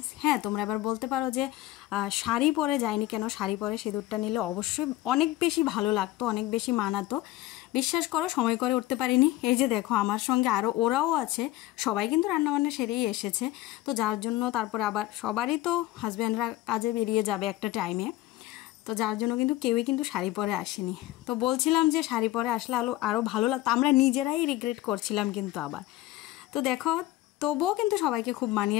হ্যাঁ, তোমরা এবার বলতে পারো যে শাড়ি পরে যায়নি কেন, শাড়ি পরে সিঁদুরটা নিলে অবশ্যই অনেক বেশি ভালো লাগতো, অনেক বেশি মানাতো। বিশ্বাস করো সময় করে উঠতে পারিনি। এই যে দেখো আমার সঙ্গে আরও ওরাও আছে, সবাই কিন্তু রান্নাবান্না সেরেই এসেছে। তো যার জন্য তারপরে আবার সবারই তো হাজব্যান্ডরা কাজে বেরিয়ে যাবে একটা টাইমে, তো যার জন্য কিন্তু কেউই কিন্তু শাড়ি পরে আসেনি। তো বলছিলাম যে শাড়ি পরে আসলে আরও ভালো লাগতো, আমরা নিজেরাই রিগ্রেট করছিলাম কিন্তু আবার। তো দেখো তবুও কিন্তু সবাইকে খুব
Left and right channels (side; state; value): right; quieter; 16.2 dB